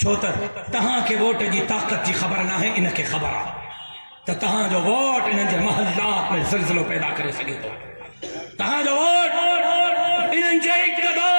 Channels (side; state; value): both; inverted; correlation -1.00